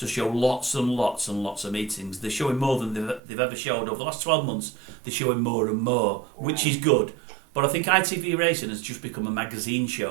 show lots and lots and lots of meetings. They're showing more than they've ever showed over the last 12 months. They're showing more and more, which is good. But I think ITV Racing has just become a magazine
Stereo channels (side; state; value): left; drops out; at 3.2 s